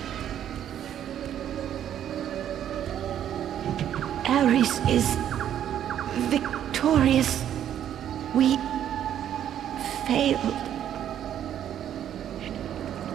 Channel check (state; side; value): quieter; left; 10.4 dB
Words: Ares is victorious. We failed.